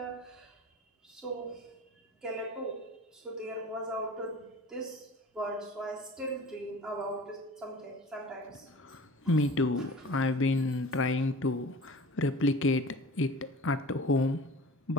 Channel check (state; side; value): normal; both; correlation 0.40